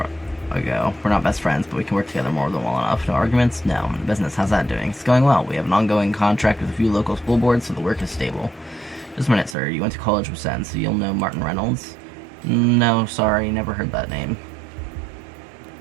ago. We're not best friends, but we can work together more than well enough. No arguments? No. The business, how's that doing? It's going well. We have an ongoing contract with a few local school boards, so the work is stable. Just a minute, sir. You went to college with Zen, so you'll know Martin Reynolds? No, sorry, never heard that name.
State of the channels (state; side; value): drops out; left; at 9.6 s